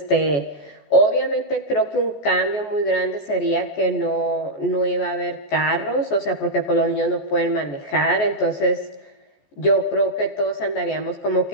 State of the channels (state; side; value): late; right; 14 ms